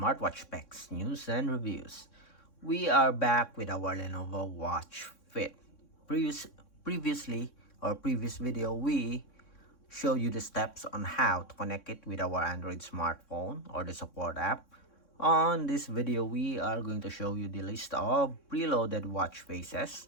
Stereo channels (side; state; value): right; late; 3.6 ms